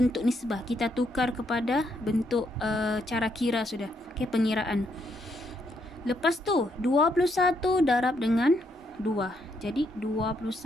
nisbah. Kita tukar kepada bentuk cara kira sudah. Okey, pengiraan. Lepas tu 21 darab dengan 2. Jadi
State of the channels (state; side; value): normal; both; correlation 0.75